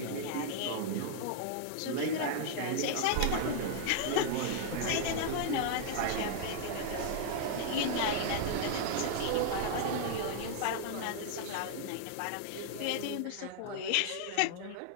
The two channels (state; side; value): different; both; correlation -0.01